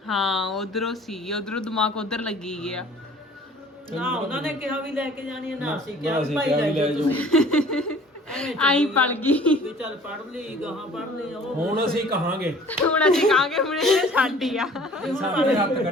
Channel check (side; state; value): both; normal; correlation 0.51